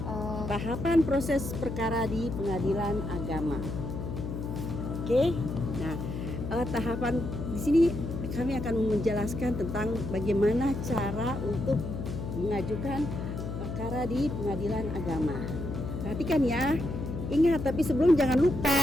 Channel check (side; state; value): left; noise; hum, 5 dB below the sound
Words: tahapan proses perkara di pengadilan agama. Oke, nah tahapan di sini kami akan menjelaskan tentang bagaimana cara untuk mengajukan perkara di pengadilan agama. Perhatikan ya, ingat tapi sebelum jangan